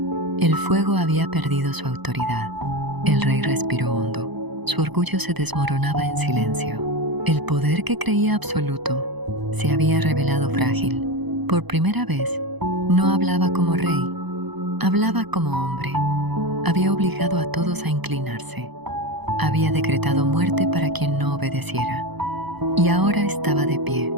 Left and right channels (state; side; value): late; left; 0.99 ms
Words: El fuego había perdido su autoridad. El rey respiró hondo. Su orgullo se desmoronaba en silencio. El poder que creía absoluto se había revelado frágil. Por primera vez, no hablaba como rey, hablaba como hombre. Había obligado a todos a inclinarse. Había decretado muerte para quien no obedeciera. Y ahora estaba de pie,